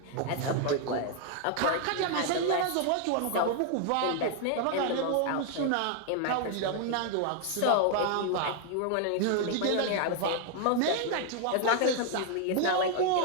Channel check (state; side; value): different; both; correlation 0.00